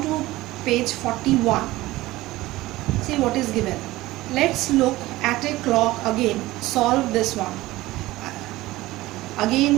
to page 41. See what is given. Let's look at a clock again. Solve this one.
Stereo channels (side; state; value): left; quieter; 18.1 dB